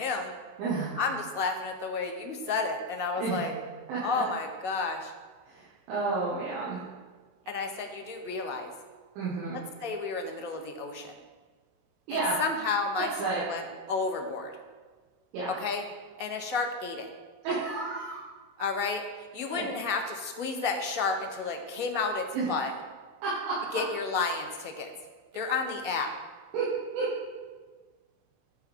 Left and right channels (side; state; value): left; late; 16 ms